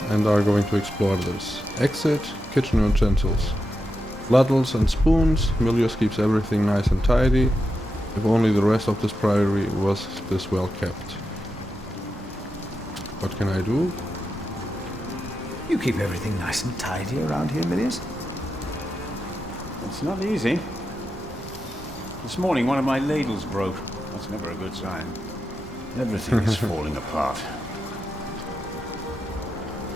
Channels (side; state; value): both; normal; correlation 0.88